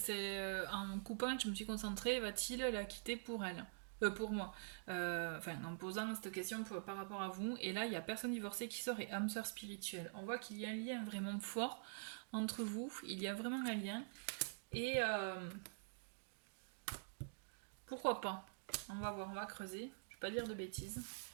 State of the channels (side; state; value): left; silent; digital silence